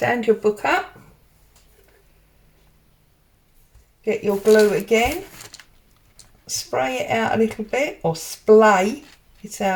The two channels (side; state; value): both; identical; correlation 1.00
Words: your book up, get your glue again, spray it out a little bit, or splay it